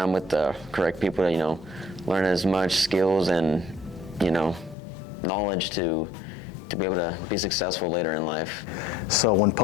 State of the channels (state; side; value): drops out; right; at 4.8 s